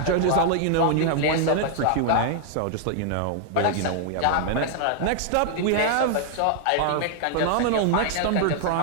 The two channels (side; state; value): both; different; correlation 0.00